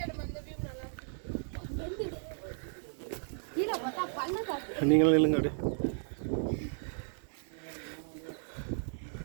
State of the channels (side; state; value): left; silent; 55 dB below the other